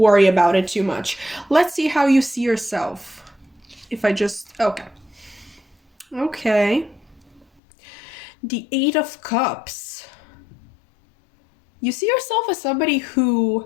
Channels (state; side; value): drops out; right; at 7.5 s